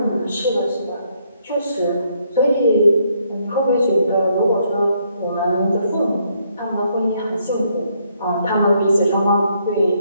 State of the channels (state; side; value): inverted; both; correlation -0.72